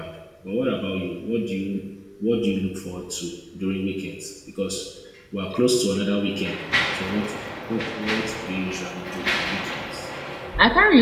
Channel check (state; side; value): identical; both; correlation 1.00